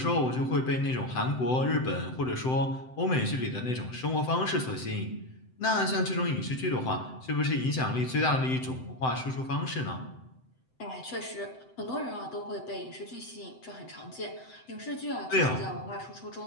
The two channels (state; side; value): late; right; 7.8 ms